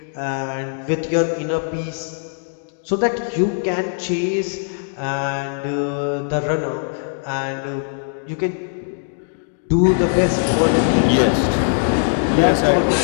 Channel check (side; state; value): right; silent; digital silence